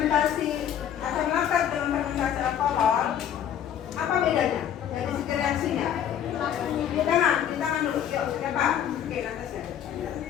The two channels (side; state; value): right; quieter; 9.7 dB